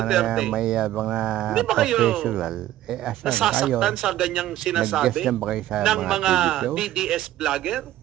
may mga Hindi ba kayo professional, asan kayo? nasasaktan sa ganyang sinasabi Nag-guest na ba kayo sa ng mga TV shows? DDS vlogger?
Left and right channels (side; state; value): left; quieter; 13.8 dB